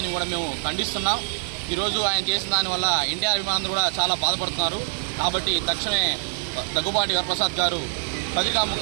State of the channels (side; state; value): left; silent; digital silence